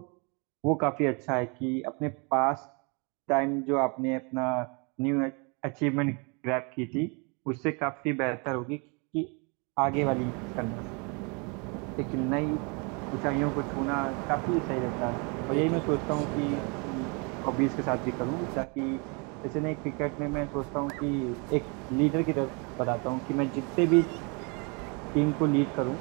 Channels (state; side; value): quieter; left; 32.5 dB